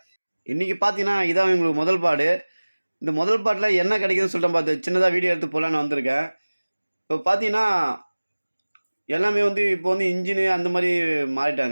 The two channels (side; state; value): both; inverted; correlation -1.00